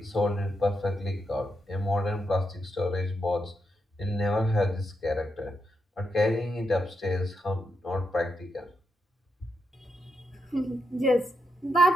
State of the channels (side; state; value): both; normal; correlation 0.83